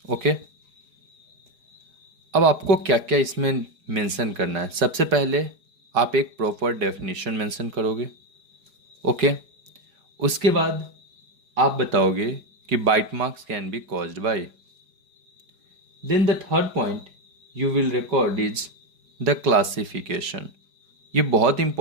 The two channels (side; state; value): left; late; 4.9 ms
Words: ओके, अब आपको क्या क्या इसमें मेंशन करना है. सबसे पहले आप एक प्रॉपर डेफिनेशन मेंशन करोगे. ओके, उसके बाद आप बताओगे कि bite marks can be caused by. Then the third point you will record is the classification. ये बहुत